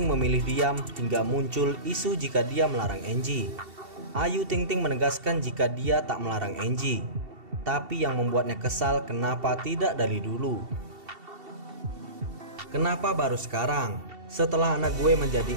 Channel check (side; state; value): left; late; 2.7 ms